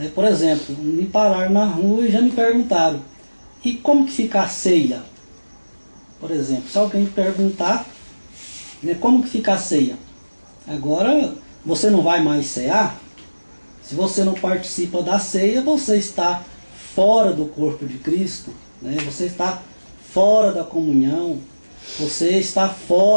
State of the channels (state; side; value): inverted; both; correlation -1.00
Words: Por exemplo, me pararam na rua e já me perguntaram: e como que fica a ceia? Por exemplo, se alguém perguntar, né, como que fica a ceia? Agora, você não vai mais cear? Se você não participa da ceia, você está fora do corpo de Cristo, né? Você está fora da comunhão, você está